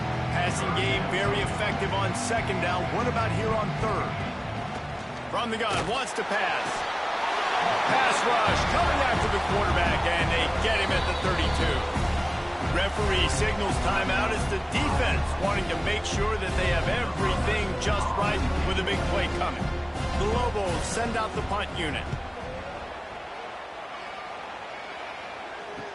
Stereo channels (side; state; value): both; identical; correlation 1.00